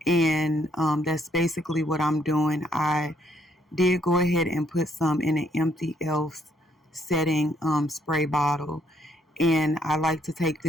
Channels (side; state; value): both; normal; correlation 0.70